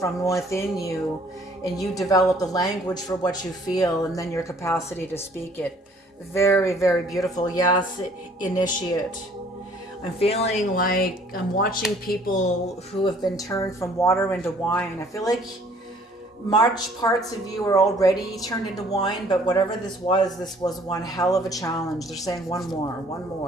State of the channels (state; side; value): normal; both; correlation 0.58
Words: within you, and you develop the language for what you feel, and then your capacity to speak it. Very, very beautiful. Yes, initiate. I'm feeling like I'm watching people who have been turned from water into wine. I feel like March parts of you are already turned into wine, but whatever this was one hell of a challenge. They're saying one